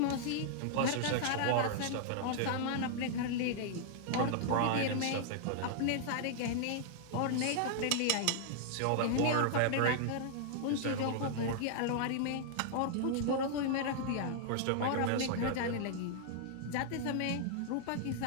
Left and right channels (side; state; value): both; different; correlation -0.01